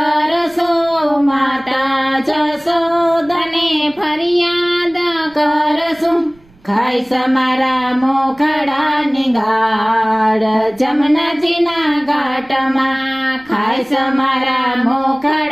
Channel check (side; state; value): right; noise; rumble, 29 dB below the sound